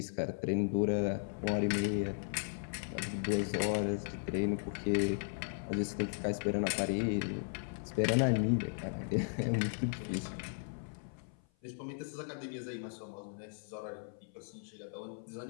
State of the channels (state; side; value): silent; right; 53 dB below the other